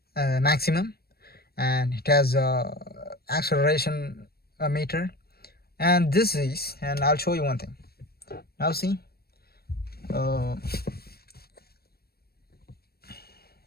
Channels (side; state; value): right; late; 0.45 ms